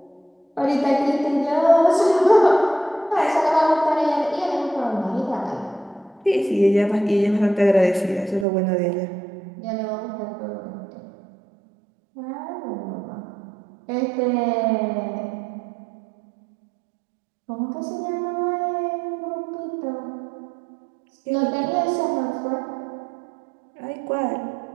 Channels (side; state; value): left; drops out; at 8.5 s